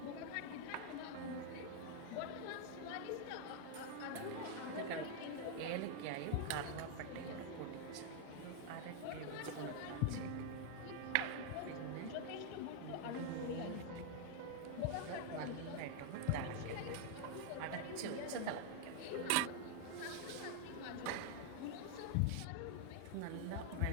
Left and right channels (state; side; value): different; both; correlation 0.00